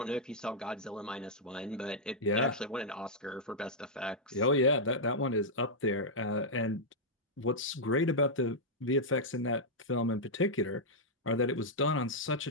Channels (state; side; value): normal; both; correlation -0.06